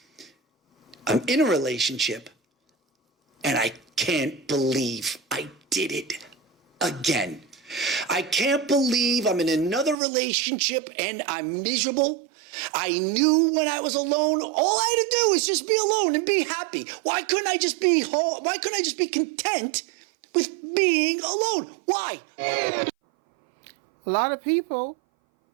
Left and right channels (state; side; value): drops out; left; at 10.0 s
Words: I'm in a relationship and I can't believe I did it again. I can't believe I'm in another relationship and I'm miserable. I knew when I was alone, all I had to do was just be alone and be happy. Why couldn't I just be whole? Why couldn't I just be content with being alone? Why? A lot of people